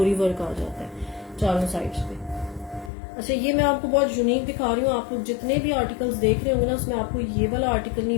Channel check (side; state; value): right; drops out; at 2.9 s